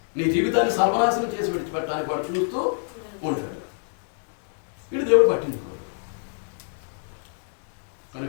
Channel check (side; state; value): right; silent; digital silence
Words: నీ జీవితాన్ని సర్వనాశనం చేసి విడిచిపెట్టడానికి వాడు చూస్తూ ఉంటాడు. వీడు దేవుడు పట్టించుకోడు.